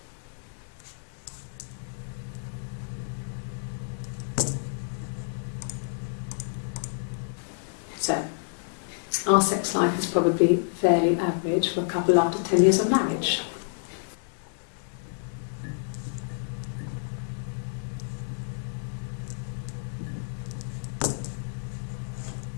So, our sex life is probably fairly average for a couple after 10 years of marriage.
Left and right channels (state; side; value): silent; right; digital silence